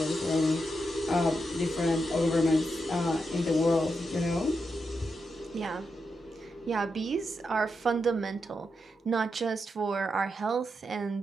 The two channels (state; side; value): normal; both; correlation 0.85